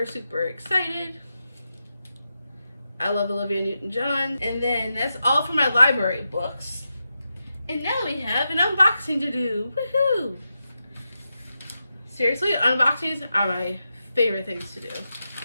super excited. I love Olivia Newton-John. And then that's all for my library books. And now we have an unboxing to do. Woohoo! Seriously, unboxings are my favorite things to do.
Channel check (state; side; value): inverted; both; correlation -0.89